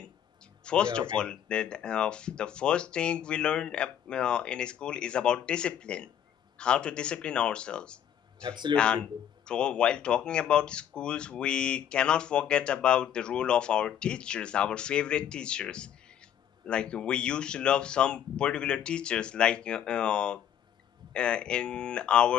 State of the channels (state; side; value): quieter; right; 9.7 dB